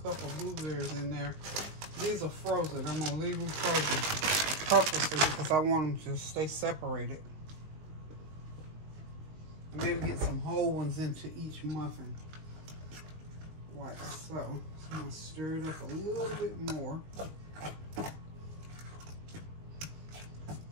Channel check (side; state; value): left; late; 19 ms